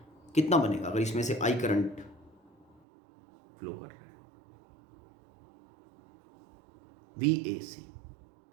कितना बनेगा अगर इसमें से I करंट फ्लो कर रहा है। VAC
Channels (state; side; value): drops out; left; at 2.8 s